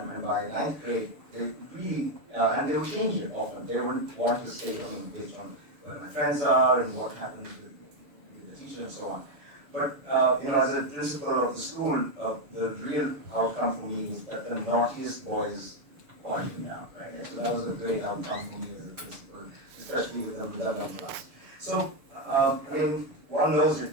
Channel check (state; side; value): late; left; 6.9 ms